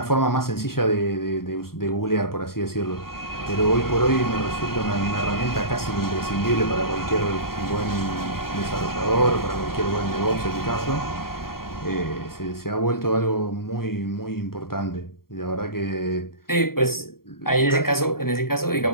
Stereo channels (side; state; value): right; late; 0.93 ms